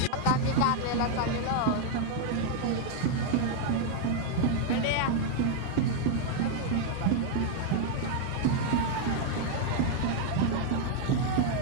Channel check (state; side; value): different; both; correlation 0.00